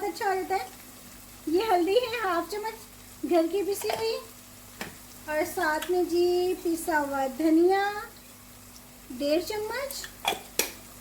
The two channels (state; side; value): identical; both; correlation 1.00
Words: अच्छा हो जाता है। ये हल्दी है 1/2 चम्मच घर की पिसी हुई, और साथ में जी पिसा हुआ धनिया 1.5 चम्मच,